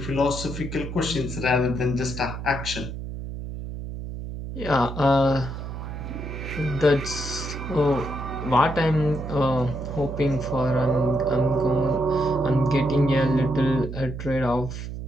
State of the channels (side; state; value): right; noise; hum, 8 dB below the sound